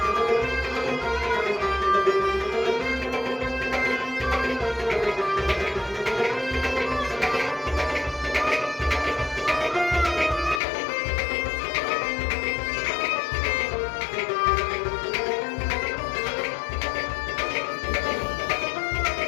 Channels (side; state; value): right; drops out; at 10.6 s